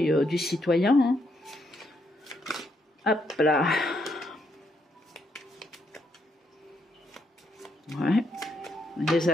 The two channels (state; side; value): normal; both; correlation 0.76